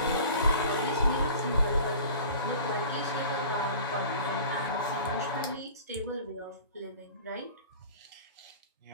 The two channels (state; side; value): inverted; both; correlation -0.42